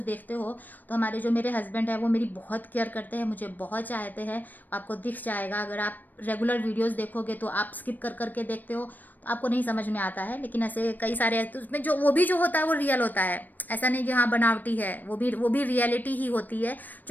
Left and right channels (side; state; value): right; late; 0.087 ms